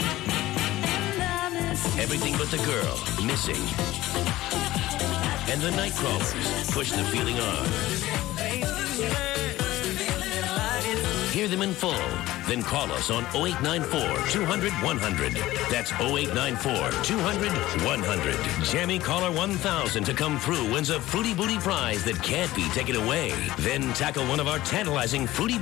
Everything But the Girl, Missing. And the Nightcrawlers, Push the Feeling On. Hear them in full. Then call us on 0894-200-100. That's 0894-200-100. Jammy Caller 1000 to come through wins a Fruity Booty prize that can't be taken away. Then tackle one of our tantalizing Fruity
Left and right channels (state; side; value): quieter; right; 16.5 dB